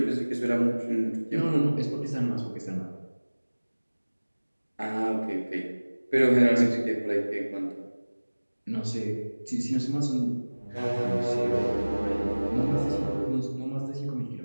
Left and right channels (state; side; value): inverted; both; correlation -1.00